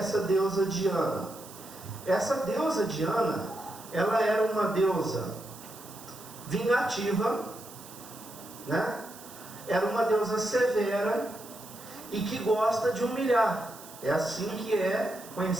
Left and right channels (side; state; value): right; noise; hiss, 17 dB below the sound